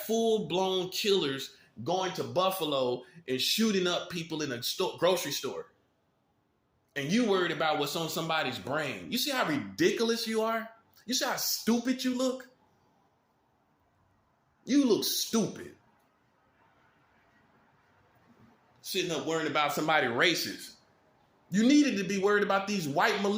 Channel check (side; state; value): both; identical; correlation 1.00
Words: killers going to Buffalo and shooting up people in a grocery store. And you worried about what's on somebody's brain. You see how ridiculous you are? You see how stupid you look? You look stupid. Sitting up worrying about somebody racist. You needed to be worried about these white